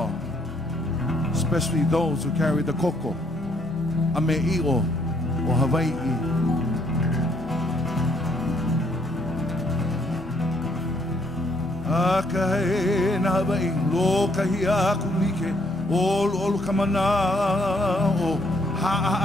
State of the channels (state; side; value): normal; both; correlation 0.68